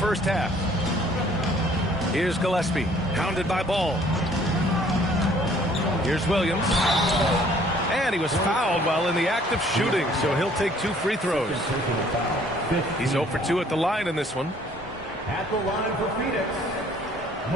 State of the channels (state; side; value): normal; both; correlation 0.58